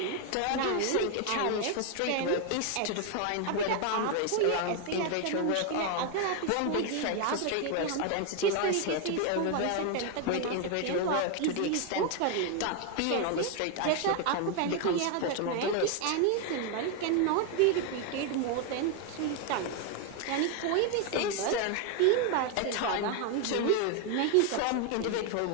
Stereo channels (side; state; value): both; different; correlation 0.01